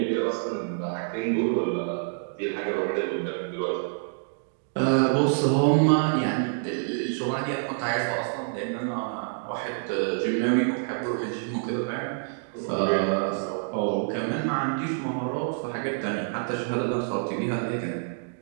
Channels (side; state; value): left; silent; digital silence